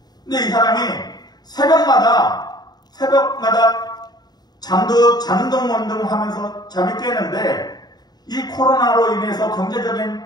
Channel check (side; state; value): right; late; 0.20 ms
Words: 근데 이 사람이 새벽마다 자는 둥먼둥 하면서 잠이 깨는데, 이 코로나로 인해서 경제적인